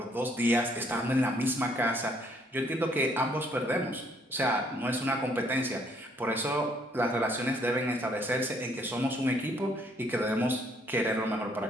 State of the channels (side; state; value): both; normal; correlation 0.66